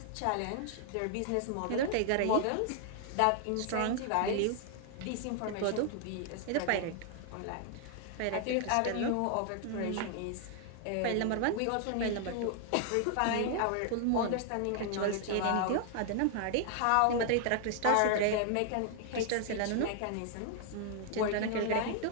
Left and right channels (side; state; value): both; different; correlation 0.00